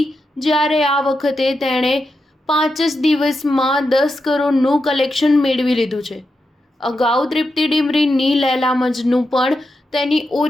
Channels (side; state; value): both; normal; correlation 0.87